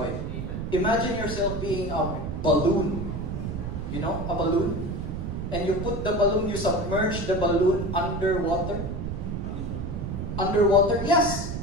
Amen. Imagine yourself being a balloon. You know, a balloon? And you put the balloon, you submerge the balloon underwater. Underwater? Yes!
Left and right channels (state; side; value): noise; right; rumble, 4 dB below the sound